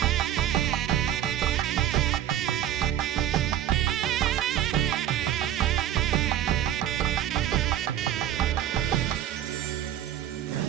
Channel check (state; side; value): quieter; left; 11.2 dB